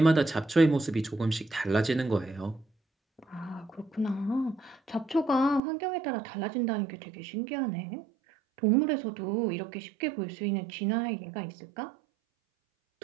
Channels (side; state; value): left; drops out; at 5.6 s